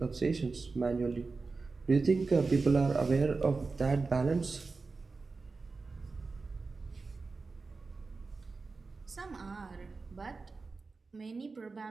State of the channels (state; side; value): quieter; left; 4.1 dB